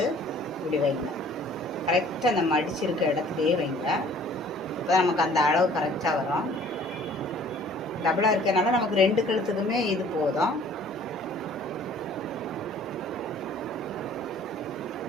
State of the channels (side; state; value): both; normal; correlation 0.53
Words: இப்படி வைங்க. கரெக்டாக அந்த மடிச்சிருக்க இடத்துலையே வைங்க. இப்போ நமக்கு அந்த அளவு கரெக்டாக வரும். டபுளாக இருக்கிறனால நமக்கு 2 கழுத்துக்குமே இது போதும்.